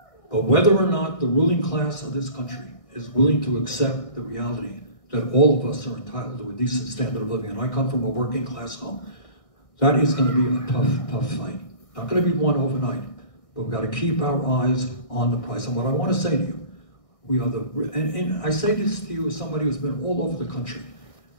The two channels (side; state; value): right; late; 1.6 ms